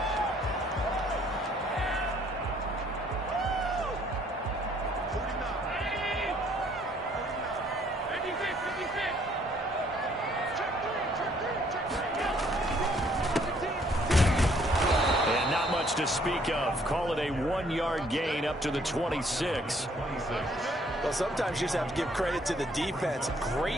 To speak of. Call it a 1-yard gain up to the 26. Well, sometimes you just have to give credit to the defense.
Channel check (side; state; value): both; normal; correlation 0.64